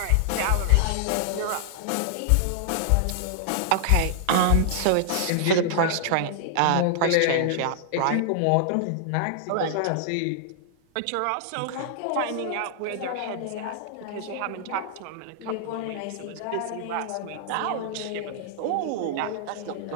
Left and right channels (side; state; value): both; different; correlation -0.01